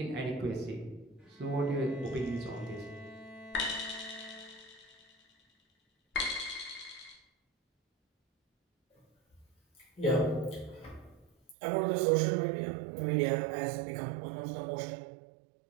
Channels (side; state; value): left; drops out; at 11.6 s